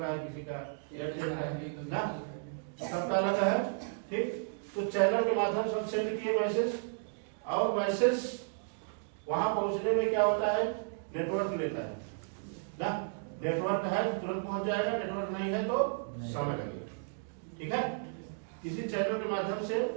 है, किसी का एयरटेल का है ना, सबका अलग है। ठीक, तो चैनल के माध्यम से हम सेंड किए मैसेज, और मैसेज वहां पहुंचने में क्या होता है, नेटवर्क लेता है ना। नेटवर्क है तो तुरंत पहुंच जाएगा, नेटवर्क नहीं है तो समय लगेगा। ठीक है, किसी चैनल के माध्यम से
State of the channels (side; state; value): left; silent; digital silence